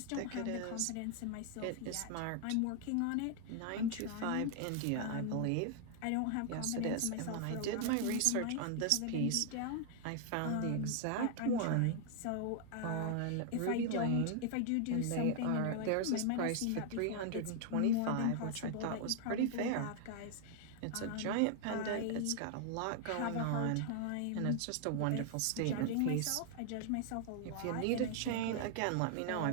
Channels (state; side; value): different; both; correlation 0.00